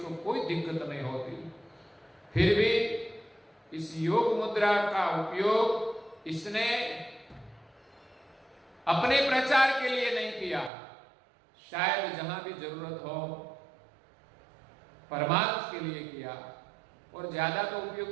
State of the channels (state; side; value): drops out; left; at 10.7 s